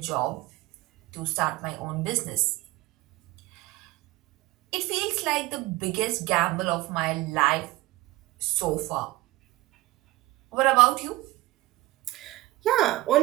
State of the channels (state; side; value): quieter; left; 19.0 dB